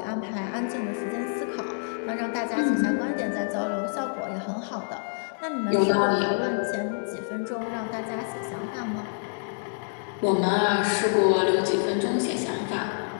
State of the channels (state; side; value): silent; right; digital silence